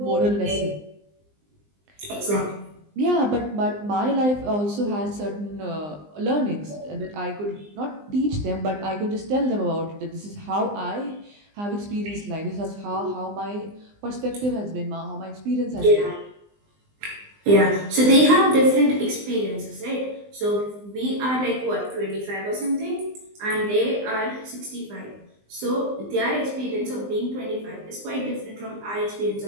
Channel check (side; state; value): left; late; 20 ms